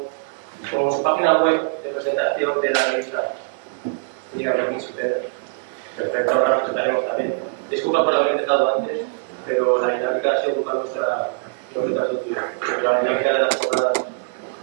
su página web de presentación de la revista Liga de Príncipe, perfecto, ahora presentaremos también. Disculpa por haber empezado antes, pero la dinámica ha sido culpa nuestra, no que te has sentido, pero la dinámica de las jornadas.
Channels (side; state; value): left; silent; digital silence